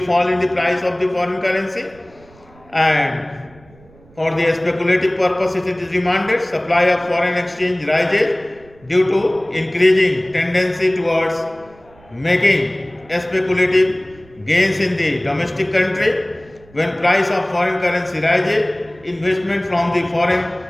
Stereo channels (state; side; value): noise; right; rumble, 26 dB below the sound